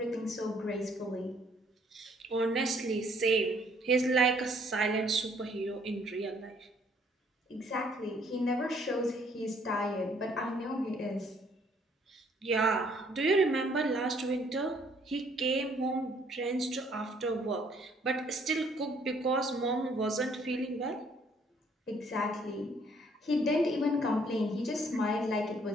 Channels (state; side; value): normal; both; correlation 0.64